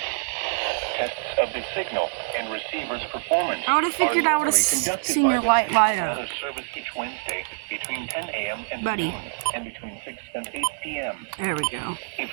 Tests of the signal and receiver's performance. I would have figured I would have seen your light light up. Weather service each Wednesday between 10 a.m. and Buddy. noon, and between 6 and 8 p.m. There we go. If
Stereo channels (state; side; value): silent; left; digital silence